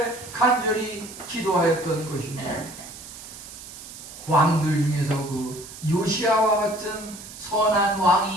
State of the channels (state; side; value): noise; right; hiss, 14 dB below the sound